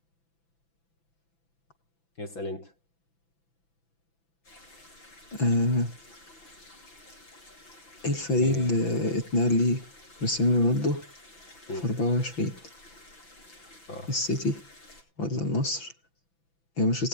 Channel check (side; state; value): right; late; 6.0 ms